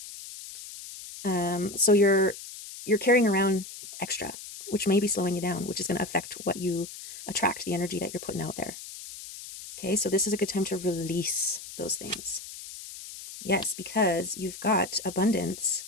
So you're carrying around extra, which may be slowing you down, which is going to affect what you attract, the energy that you're putting out there. Okay, so this is a good time to release those things. Yes, because you've got abundance,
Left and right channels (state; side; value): noise; left; hiss, 13 dB below the sound